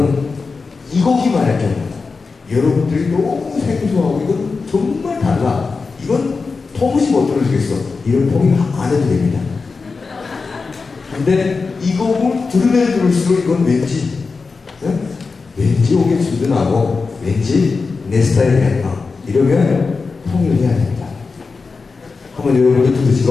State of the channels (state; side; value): quieter; right; 4.4 dB